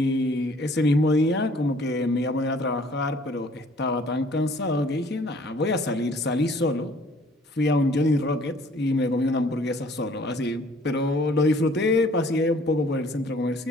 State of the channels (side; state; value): both; normal; correlation 0.56